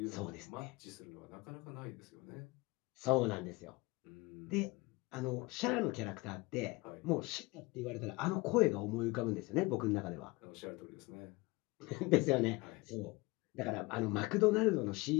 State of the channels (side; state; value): right; quieter; 23.9 dB